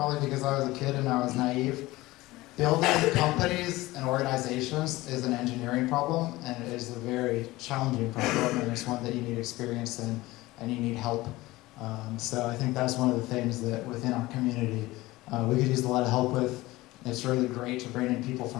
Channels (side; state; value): right; quieter; 19.1 dB